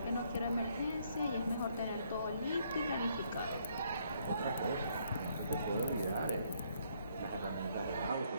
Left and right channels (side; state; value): both; inverted; correlation -0.69